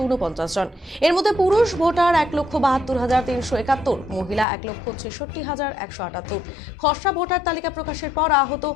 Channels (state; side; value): drops out; right; at 4.5 s